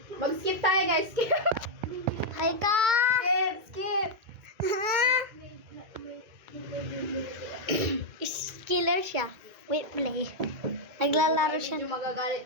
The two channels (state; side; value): late; left; 2.2 ms